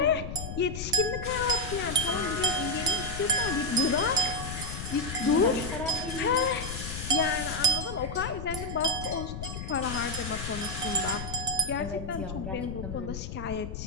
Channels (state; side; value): noise; left; rumble, 7 dB below the sound